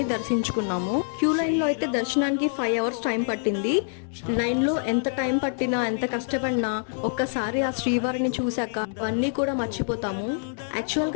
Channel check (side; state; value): right; silent; digital silence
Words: దర్శించుకున్నాము. క్యూ లైన్లో అయితే దర్శనానికి 5 అవర్స్ టైం పట్టింది. లైన్లో ఎంత టైం పట్టినా, ఎంత కష్టపడినా ఒక్కసారి ఆ శ్రీవారిని చూశాక అవన్నీ కూడా మర్చిపోతాము.